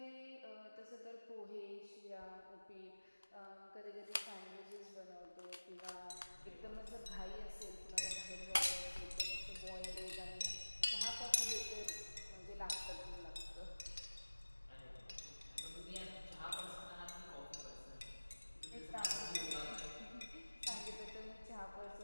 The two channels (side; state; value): both; inverted; correlation -1.00